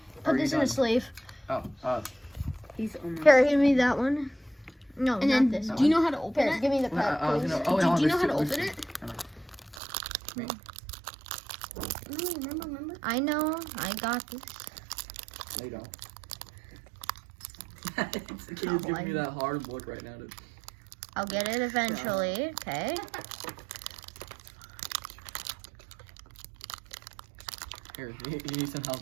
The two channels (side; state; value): left; drops out; at 9.8 s